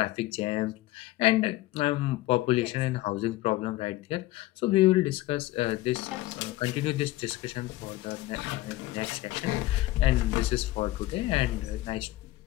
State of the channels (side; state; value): right; quieter; 17.4 dB